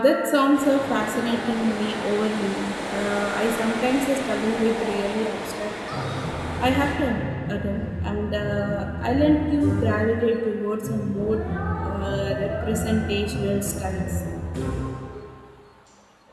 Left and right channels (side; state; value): both; identical; correlation 1.00